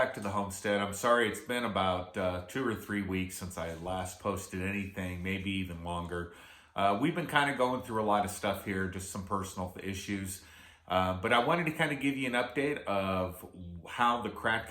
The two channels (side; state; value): both; identical; correlation 1.00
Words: to the homestead. I'm sorry it's been about 2 or 3 weeks since I last posted anything, maybe even longer. We've been kind of going through a lot of stuff here, just some personal issues. But I wanted to kind of give you an update of how the